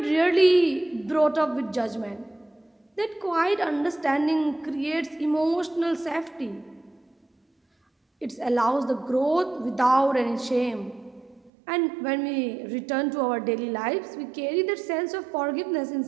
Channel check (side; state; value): left; drops out; at 11.5 s